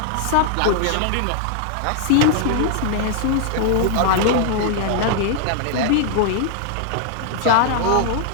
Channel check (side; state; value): both; different; correlation 0.00